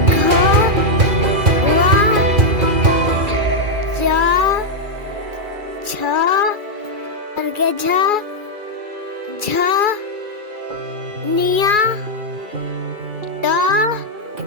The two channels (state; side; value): late; left; 2.4 ms